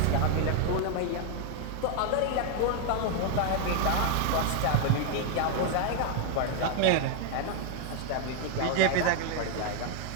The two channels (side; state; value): both; different; correlation 0.00